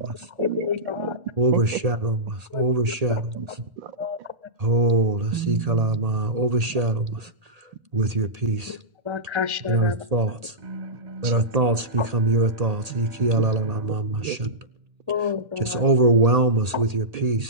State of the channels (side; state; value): left; late; 1.8 ms